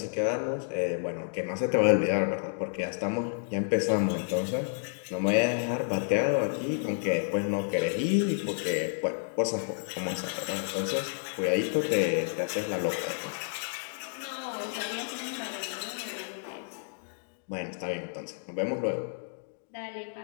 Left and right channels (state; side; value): silent; right; digital silence